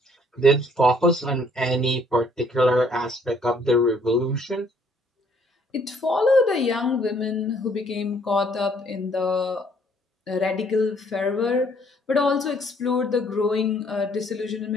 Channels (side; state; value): both; normal; correlation 0.63